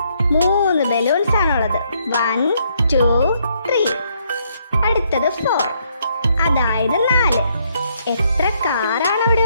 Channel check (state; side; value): inverted; both; correlation -0.72